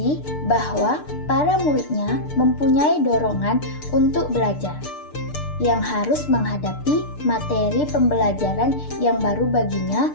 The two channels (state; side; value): late; right; 6.7 ms